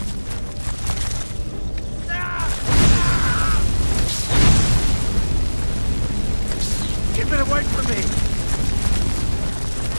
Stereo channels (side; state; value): both; inverted; correlation -1.00